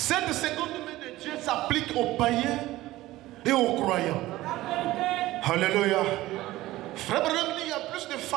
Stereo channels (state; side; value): quieter; left; 16.9 dB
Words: seconde main de Dieu s'applique aux païens et aux croyants. Alléluia. Frère Branham dit, il y a plus de